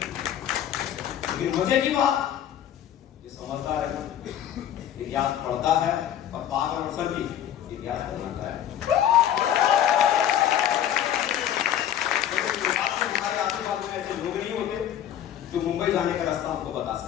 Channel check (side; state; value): right; quieter; 10.5 dB